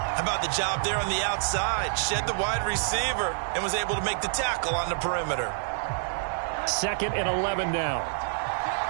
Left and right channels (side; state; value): left; silent; digital silence